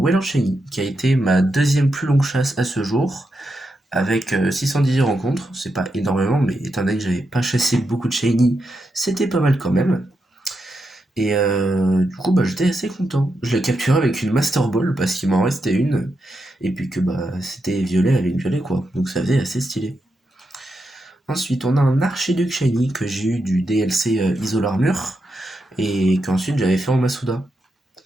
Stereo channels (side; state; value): both; normal; correlation 0.85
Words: Shiny, qui a été ma deuxième plus longue chasse à ce jour, avec 618 rencontres, c'est pas énormément, mais étant donné que j'avais pas chassé beaucoup de Shiny, c'était pas mal quand même. Et du coup, j'étais assez content. Je l'ai capturé avec une Master Ball, parce qu'il m'en restait une, et puis que c'était violet avec violet, quoi. Donc ça faisait assez stylé. Ensuite, on a un Archiduc Shiny que j'ai eu du DLC Isole Armure, et qu'ensuite j'avais fait en Masuda,